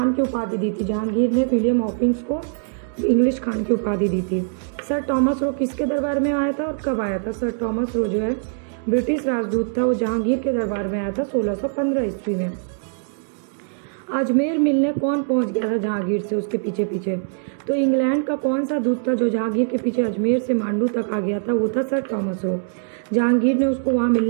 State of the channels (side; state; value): left; silent; digital silence